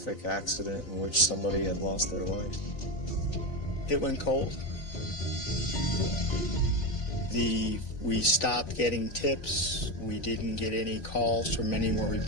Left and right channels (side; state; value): right; late; 3.7 ms